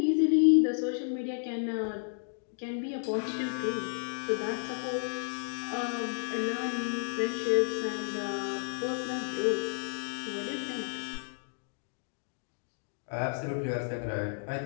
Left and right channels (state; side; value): silent; right; digital silence